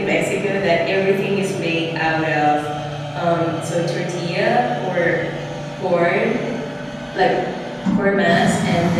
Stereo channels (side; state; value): both; identical; correlation 1.00